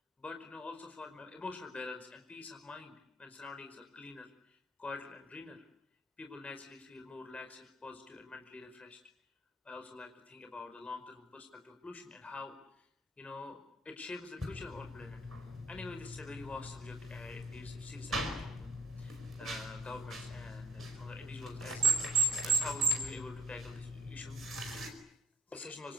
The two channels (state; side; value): normal; both; correlation 0.65